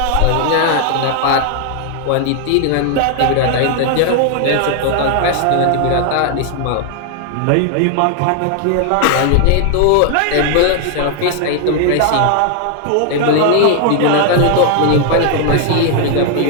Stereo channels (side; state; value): both; different; correlation 0.00